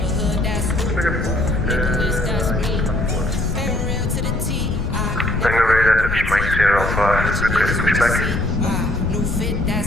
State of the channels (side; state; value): left; noise; rumble, 4 dB below the sound